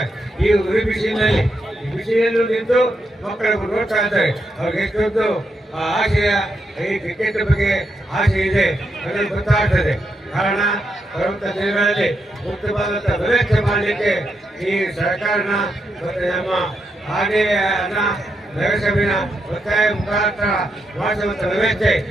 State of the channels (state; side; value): normal; both; correlation 0.82